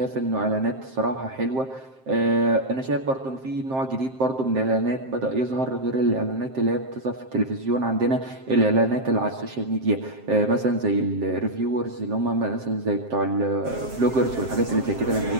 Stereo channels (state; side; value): late; left; 7.6 ms